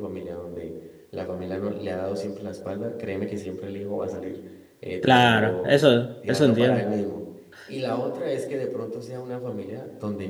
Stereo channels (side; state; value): both; identical; correlation 1.00